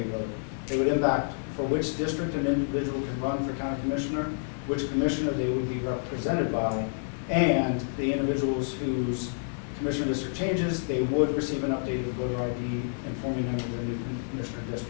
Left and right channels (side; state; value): right; silent; 57 dB below the other